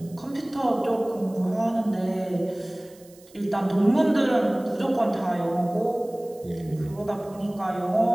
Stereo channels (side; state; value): right; noise; hiss, 26 dB below the sound